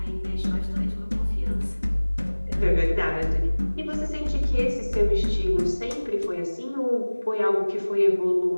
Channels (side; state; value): both; inverted; correlation -1.00